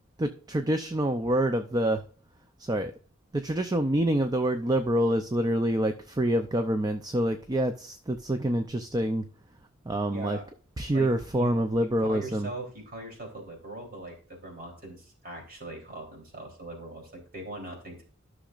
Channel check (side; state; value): both; normal; correlation 0.73